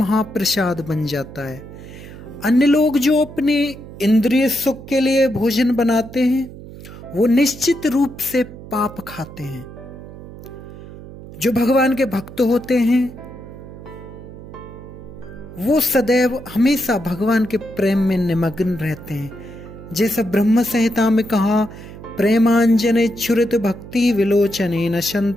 बन जाता है। अन्य लोग जो अपने इंद्रिय सुख के लिए भोजन बनाते हैं वो निश्चित रूप से पाप खाते हैं। जो भगवान के भक्त होते हैं वो सदैव हमेशा भगवान के प्रेम में निमग्न रहते हैं। जैसा ब्रह्म संहिता में कहा, प्रेमांजने छुरित भक्ति विलोचने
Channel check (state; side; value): noise; right; hum, 15 dB below the sound